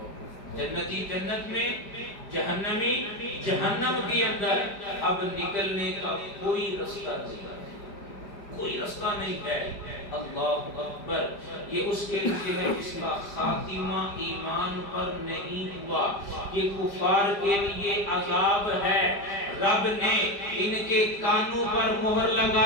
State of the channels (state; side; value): late; right; 5.0 ms